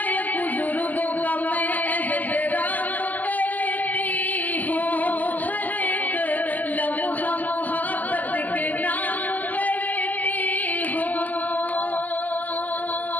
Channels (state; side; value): late; right; 0.082 ms